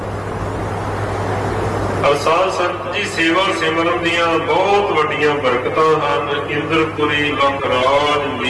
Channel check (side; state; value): both; identical; correlation 1.00